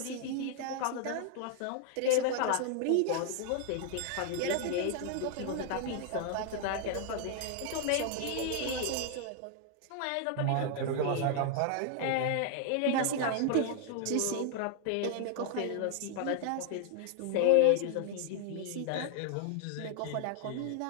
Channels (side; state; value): both; different; correlation 0.00